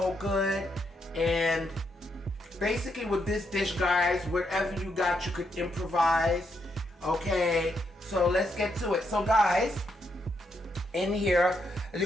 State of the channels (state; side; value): normal; both; correlation 0.79